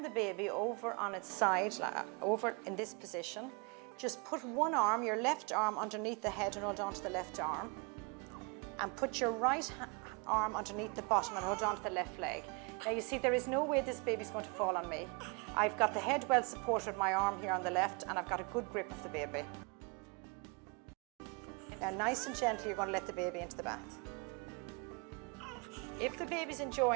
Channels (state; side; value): quieter; left; 32.0 dB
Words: baby over on its side, over in this position. Just put one arm, your left arm, underneath the head and hold on to the left arm. And put your right arm underneath the bottom and hold on to the left leg. Now you see there is no way this baby's going to fall on me. I've got the head well supported with my arm here on the left and I've got a good grip of the baby. Now nice and gently you're going to let the baby into the bath. If the baby's